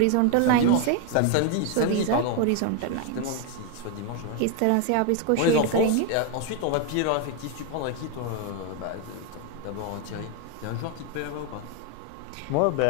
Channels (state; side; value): different; both; correlation 0.01